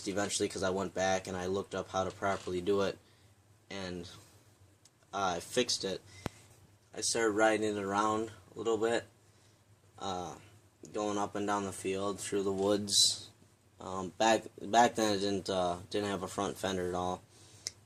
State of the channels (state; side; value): identical; both; correlation 1.00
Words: eventually because I went back and I looked up how to properly do it, and I fixed it. I started riding it around a little bit, going up and down the field through the woods. Back then it didn't have a front fender at all.